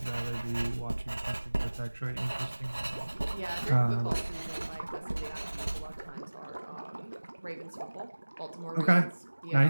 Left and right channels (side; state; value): both; inverted; correlation -1.00